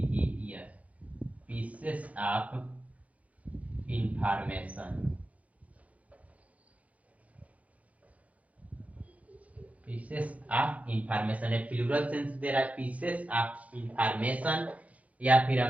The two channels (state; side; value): late; left; 0.068 ms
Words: pieces of information, pieces of information है, प्लूरल सेंस दे रहा है, पीसेस ऑफ इंफॉर्मेशन। या फिर